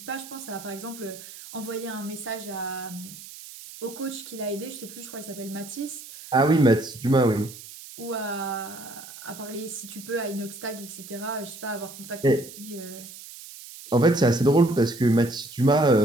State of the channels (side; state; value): right; noise; hiss, 15 dB below the sound